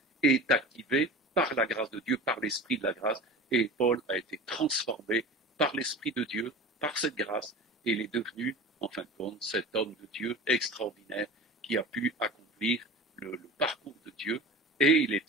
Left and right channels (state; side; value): normal; both; correlation 0.34